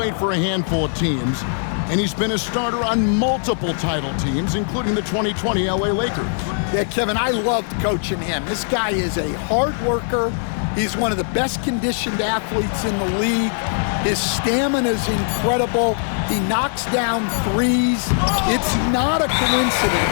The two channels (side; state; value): right; silent; 65 dB below the other